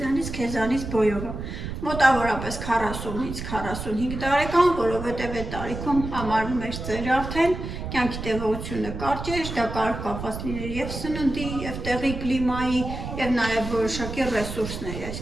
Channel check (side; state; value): right; noise; rumble, 7 dB below the sound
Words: քեզանից բոյով է։ Մոտավորապես 40-ից 45 տարեկան, որովհետև այդ տարիքում համարվում էր ծեր արդեն, կյանքի տևողությունը կարճ էր, դա կարող կապված լիներ եւ սննդի, եւ տեղի կլիմայի, եւ նաեւ որոշակի ռեսուրսների,